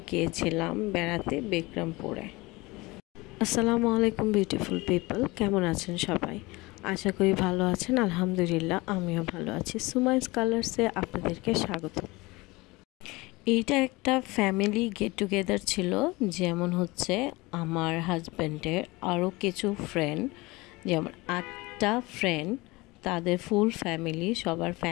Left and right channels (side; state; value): right; quieter; 22.7 dB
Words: গিয়েছিলাম বেড়াতে বিক্রমপুরে। আসসালামু আলাইকুম বিউটিফুল পিপল, কেমন আছেন সবাই? আশা করি ভালো আছেন। আলহামদুলিল্লাহ, আমিও ভালো আছি। সুমাইস কালার্সে আপনাদেরকে স্বাগত। এইটা একটা ফ্যামিলি গেট টুগেদার ছিল, যেমন হচ্ছে আমার হাজব্যান্ডের আরও কিছু ফ্রেন্ড, যেমন 8টা ফ্রেন্ড, তাদের ফুল ফ্যামিলি, সবার